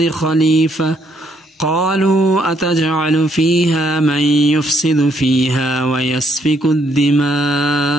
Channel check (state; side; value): normal; both; correlation 0.71